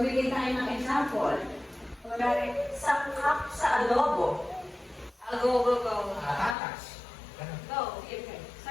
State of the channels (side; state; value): right; drops out; at 6.6 s